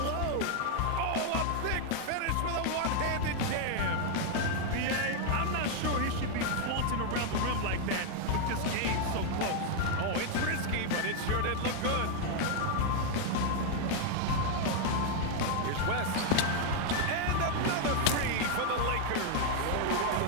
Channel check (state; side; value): different; both; correlation 0.00